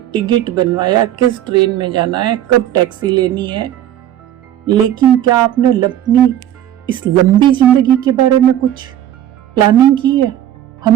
टिकट बनवाया, किस ट्रेन में जाना है, कब टैक्सी लेनी है, लेकिन क्या आपने अपनी इस लंबी जिंदगी के बारे में कुछ प्लानिंग की है?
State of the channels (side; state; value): left; quieter; 11.7 dB